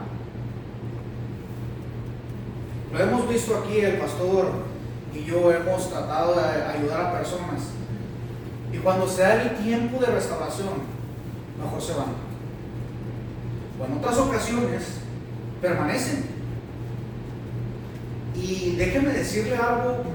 Lo hemos visto aquí, el pastor y yo hemos tratado de ayudar a personas, y cuando se da el tiempo de restauración, mejor se van. O en otras ocasiones permanecen. Y déjenme decirle algo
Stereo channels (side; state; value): both; identical; correlation 1.00